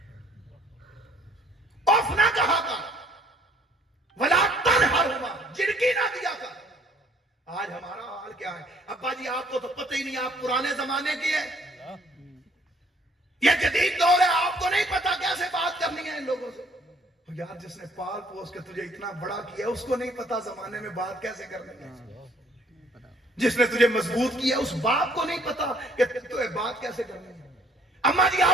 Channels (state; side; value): normal; both; correlation 0.61